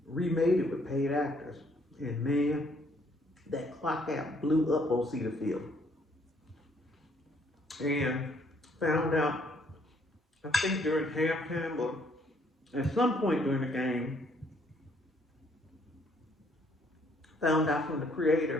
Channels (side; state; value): both; normal; correlation 0.66